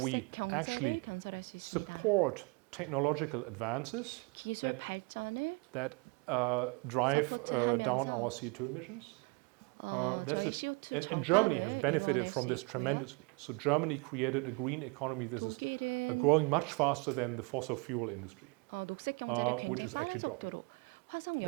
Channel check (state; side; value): quieter; left; 31.1 dB